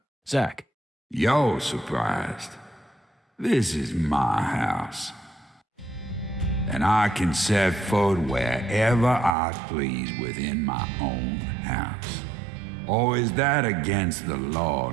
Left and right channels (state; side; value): drops out; left; at 9.3 s